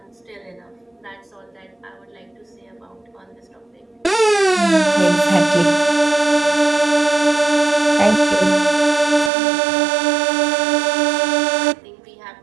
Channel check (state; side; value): drops out; left; at 9.3 s